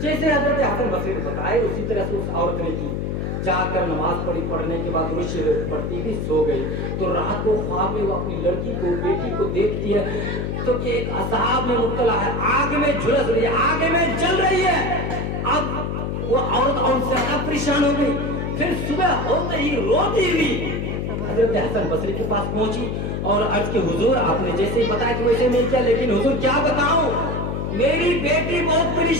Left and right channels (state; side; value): noise; left; hum, 2 dB below the sound